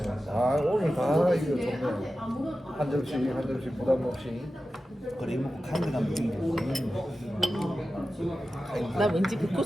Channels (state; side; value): normal; both; correlation 0.93